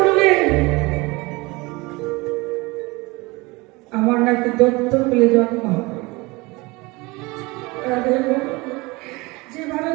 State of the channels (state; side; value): quieter; left; 23.9 dB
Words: আমার নাকি দত্ত পেলে জন্ম হবে। যেভাবে